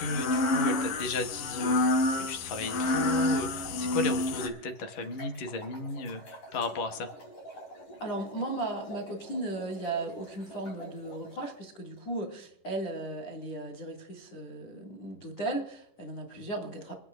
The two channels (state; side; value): late; right; 10 ms